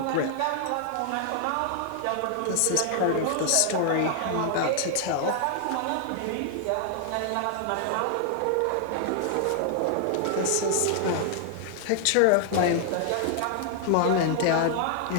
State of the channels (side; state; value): both; different; correlation 0.00